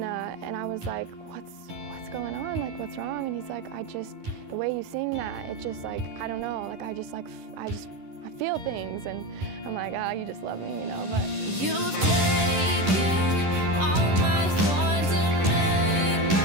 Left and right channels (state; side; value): late; left; 10 ms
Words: I was like, what's going on? Like, what's wrong? And he's like, the way you sing that, it just like, I don't know, like I feel things, and I'm like, you just love me, you know. But you've taken all my thorns and made